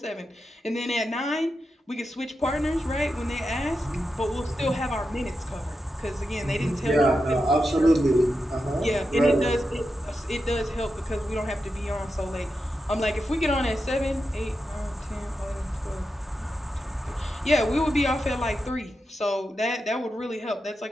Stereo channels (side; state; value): both; normal; correlation 0.88